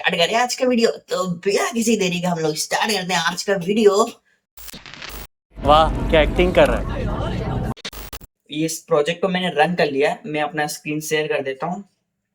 करें आज का वीडियो? तो बिना किसी देरी का हम लोग स्टार्ट करते हैं आज का वीडियो। वाह क्या एक्टिंग कर रहा है। इस प्रोजेक्ट को मैंने रन कर लिया है, मैं अपना स्क्रीन शेयर कर देता हूँ।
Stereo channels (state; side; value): identical; both; correlation 1.00